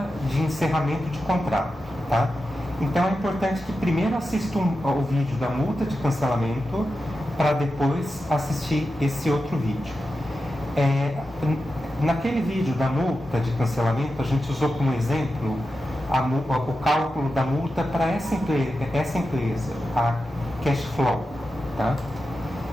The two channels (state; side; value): normal; both; correlation 0.91